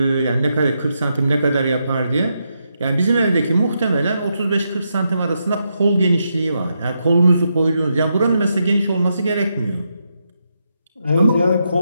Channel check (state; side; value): inverted; both; correlation -0.83